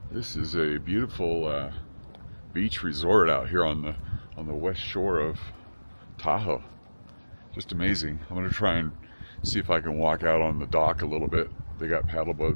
This is a beautiful beach resort out here on the west shore of Tahoe. Just amazing. I'm gonna try and see if I can walk out on the dock a little bit. They got paddle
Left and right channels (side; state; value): both; inverted; correlation -1.00